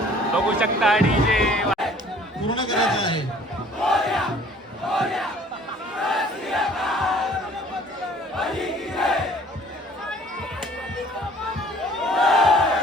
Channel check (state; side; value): normal; both; correlation 0.54